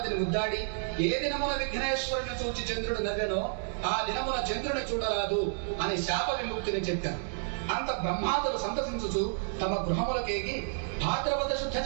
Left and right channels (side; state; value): left; silent; digital silence